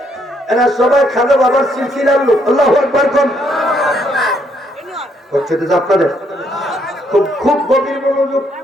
এরা সবাই খাজা বাবার সিলসিলার লোক। আল্লাহু আকবার। হচ্ছে তো আপনাদের খুব খুব গভীর মনোযোগ।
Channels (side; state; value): both; normal; correlation 0.72